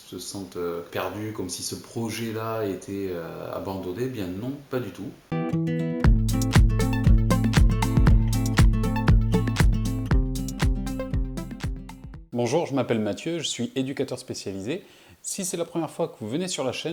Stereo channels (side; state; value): both; identical; correlation 1.00